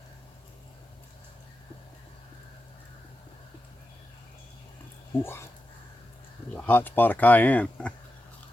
ooh, there's a hot spot of cayenne.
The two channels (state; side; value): normal; both; correlation 0.89